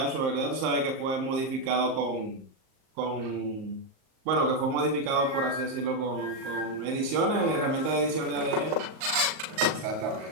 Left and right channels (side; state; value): left; late; 38 ms